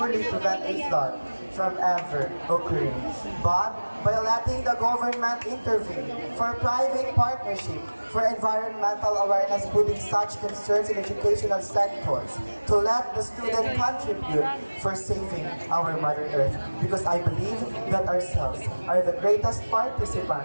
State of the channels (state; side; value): inverted; both; correlation -1.00